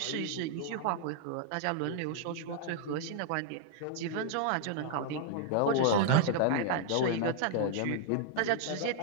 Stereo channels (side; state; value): both; different; correlation -0.01